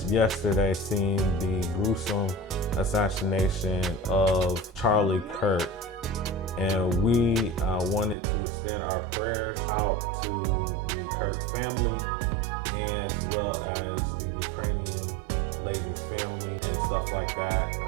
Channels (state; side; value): drops out; left; at 8.2 s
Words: yesterday seeing the gruesome assassination of Charlie Kirk. And we wanted to extend our prayers out to the Kirk family, as well as the Ukrainian lady's family and stuff like that.